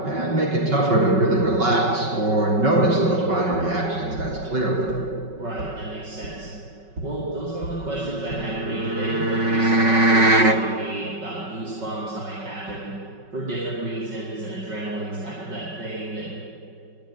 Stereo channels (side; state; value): left; late; 5.3 ms